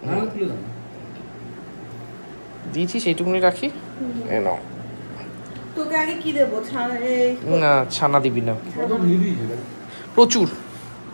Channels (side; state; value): both; inverted; correlation -1.00